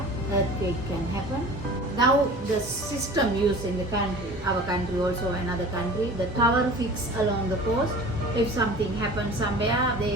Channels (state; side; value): normal; both; correlation 0.41